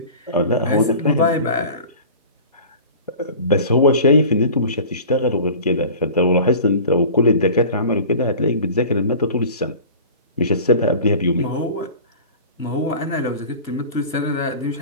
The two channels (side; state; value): both; inverted; correlation -0.39